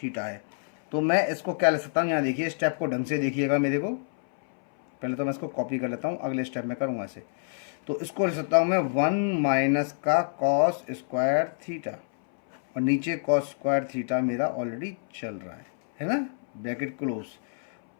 है। तो मैं इसको क्या ले सकता हूँ, यहाँ देखिए स्टेप को ढंग से देखिएगा मेरे को। पहले तो मैं इसको कॉपी कर लेता हूँ, अगले स्टेप में करूँगा इसे। तो इसको ले सकता हूँ मैं 1 माइनस का कॉस स्क्वायर थीटा, और नीचे कॉस स्क्वायर थीटा मेरा ऑलरेडी चल रहा है ना, ब्रैकेट क्लोज।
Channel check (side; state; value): right; silent; 60 dB below the other